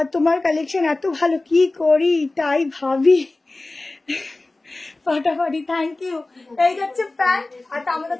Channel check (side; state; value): right; quieter; 3.0 dB